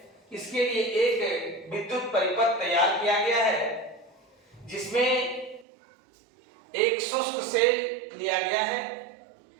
इसके लिए एक विद्युत परिपथ तैयार किया गया है जिसमें एक शुष्क सेल लिया गया है,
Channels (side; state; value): left; drops out; at 5.7 s